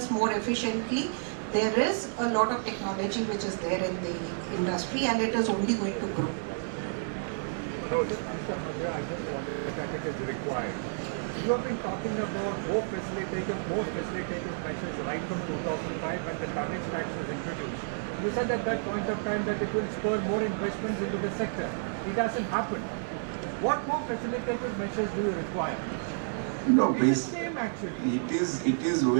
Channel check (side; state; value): left; silent; 58 dB below the other